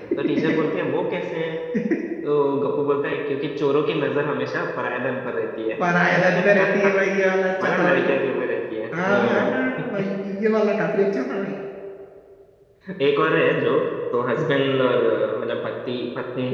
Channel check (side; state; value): both; identical; correlation 1.00